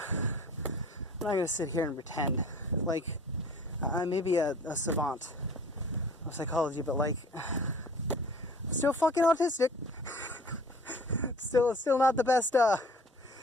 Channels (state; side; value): normal; both; correlation 0.48